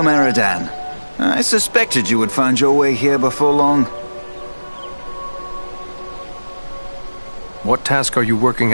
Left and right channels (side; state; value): both; inverted; correlation -1.00